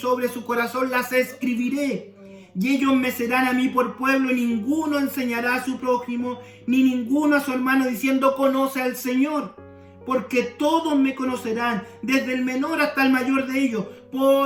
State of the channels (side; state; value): both; identical; correlation 1.00